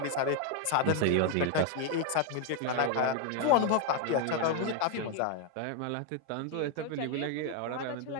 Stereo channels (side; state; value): both; different; correlation 0.00